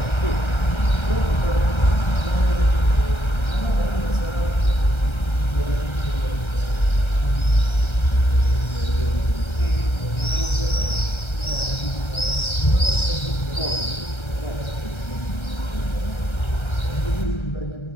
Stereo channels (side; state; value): right; late; 1.3 ms